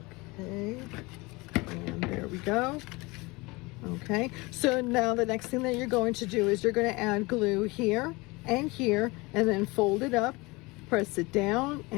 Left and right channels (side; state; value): right; quieter; 24.2 dB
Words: and there we go. Okay, so now the next thing that you're going to do is you're going to add glue here and here, and then fold it up, press it down